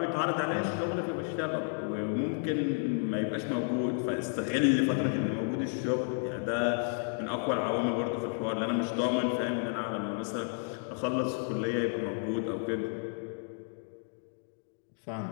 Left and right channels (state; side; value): silent; right; 56 dB below the other